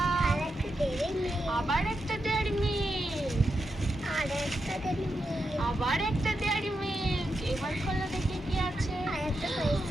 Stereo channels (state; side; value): normal; both; correlation 0.86